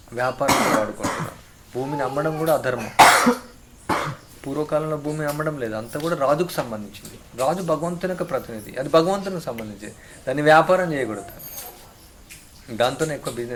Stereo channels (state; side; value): identical; both; correlation 1.00